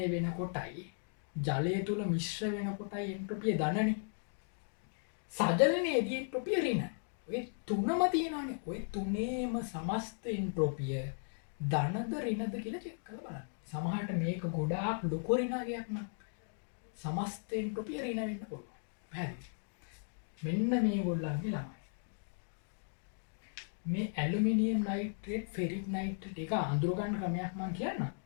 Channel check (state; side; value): silent; right; digital silence